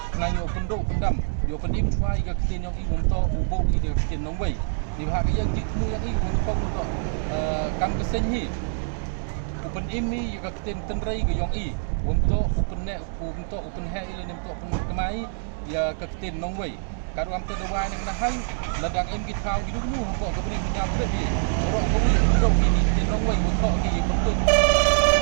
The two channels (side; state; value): left; silent; digital silence